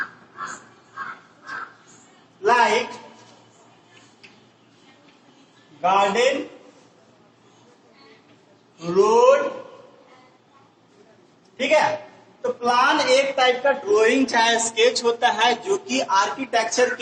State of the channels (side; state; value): both; identical; correlation 1.00